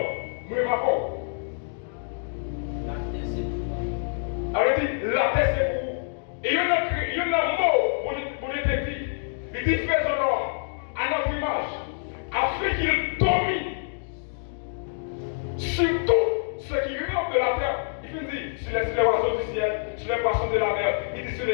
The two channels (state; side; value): silent; right; digital silence